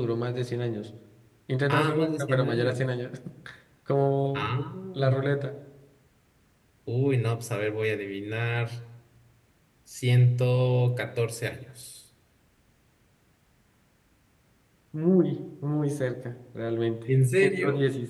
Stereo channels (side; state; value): both; identical; correlation 1.00